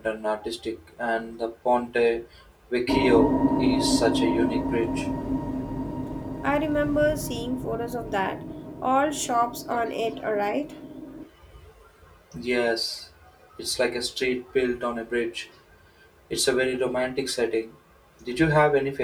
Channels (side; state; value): both; identical; correlation 1.00